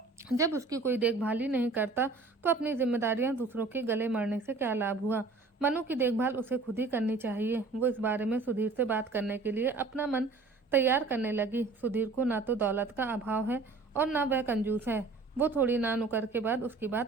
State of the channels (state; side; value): quieter; left; 3.9 dB